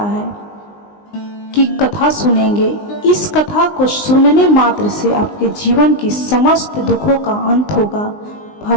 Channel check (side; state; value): right; late; 19 ms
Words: है, की कथा सुनेंगे। इस कथा को सुनने मात्र से आपके जीवन की समस्त दुखों का अंत होगा।